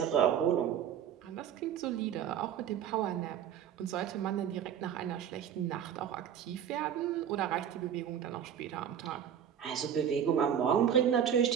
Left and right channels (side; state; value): left; quieter; 9.0 dB